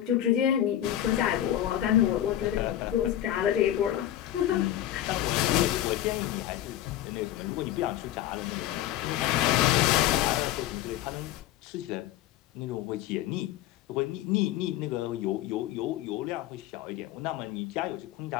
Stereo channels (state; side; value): quieter; right; 12.6 dB